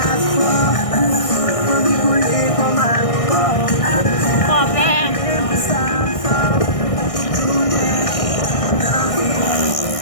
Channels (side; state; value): right; late; 1.6 ms